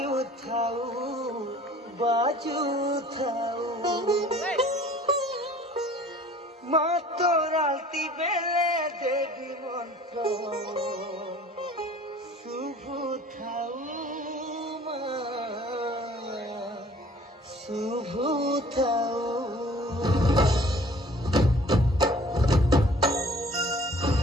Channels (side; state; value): both; normal; correlation 0.50